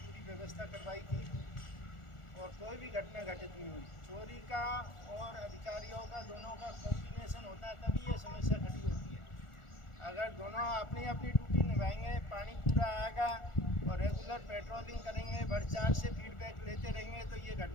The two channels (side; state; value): right; late; 1.4 ms